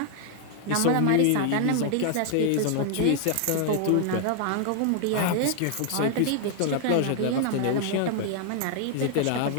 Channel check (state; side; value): different; both; correlation 0.00